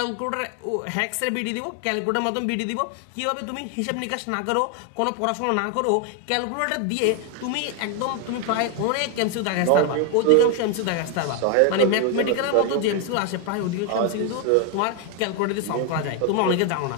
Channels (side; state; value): both; different; correlation 0.01